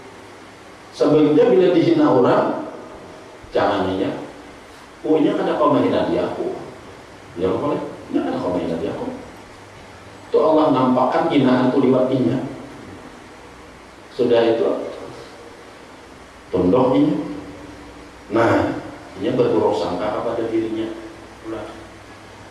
Sebaliknya bila dihina orang, cananginya, ini kan kau menghina dia aku. Ya boleh, ini kan kau menghina dia aku. Itu Allah nampakkan hinaan itu liwatinya. Sudah itu tunduk ini. Nah, ini berburuk sangka kepada dirinya.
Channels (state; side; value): identical; both; correlation 1.00